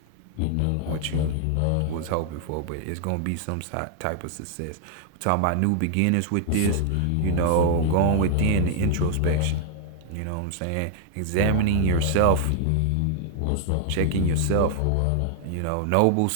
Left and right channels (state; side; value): different; both; correlation -0.01